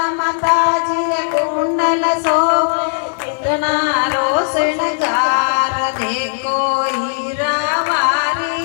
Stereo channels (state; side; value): silent; right; 59 dB below the other